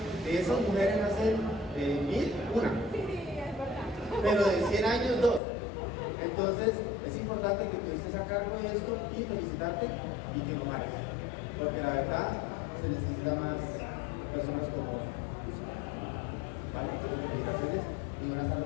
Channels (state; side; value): drops out; right; at 5.4 s